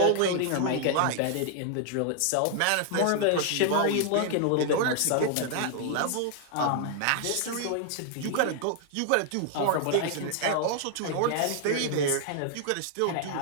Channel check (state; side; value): different; both; correlation 0.00